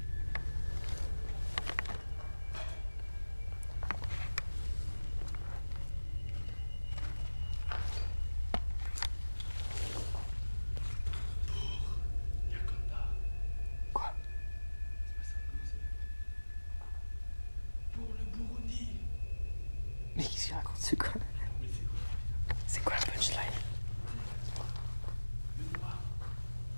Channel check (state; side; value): inverted; both; correlation -1.00